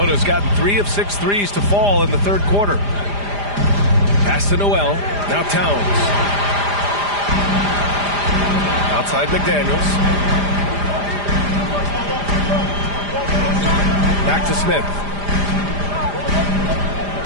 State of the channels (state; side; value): late; left; 4.9 ms